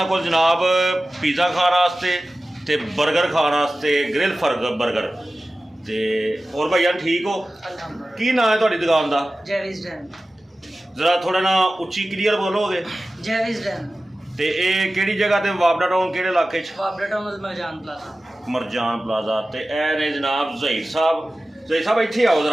को जनाब पिज़्ज़ा खाने वास्ते ते बर्गर खाने वास्ते, ग्रिल बर्गर ते और भैया ठीक हो? अल्हम्दुलिल्लाह। की नाम है तुहाडी दुकान का? जैविस डैन। जरा थोड़ा ना उच्ची क्लीयर बोलोगे? जैविस डैन। ते ये केड़ी जगह ते वाबना टाउन केड़े इलाके च? वाबना town Marjan plaza. Marjan plaza. ते ए ने जनाब जहीर साहब इत्थे आओ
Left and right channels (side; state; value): both; normal; correlation 0.96